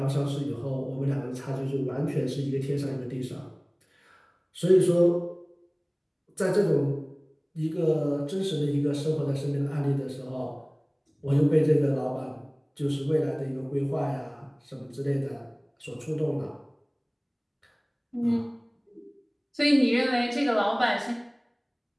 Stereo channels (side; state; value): both; identical; correlation 1.00